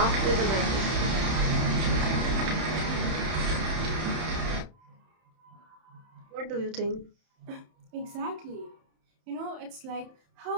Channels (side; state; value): left; late; 31 ms